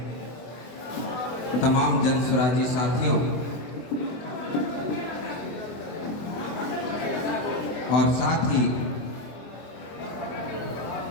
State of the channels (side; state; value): right; late; 24 ms